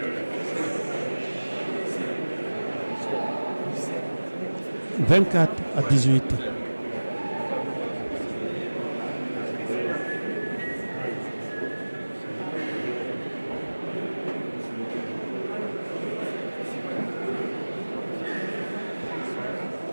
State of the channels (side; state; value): both; inverted; correlation -1.00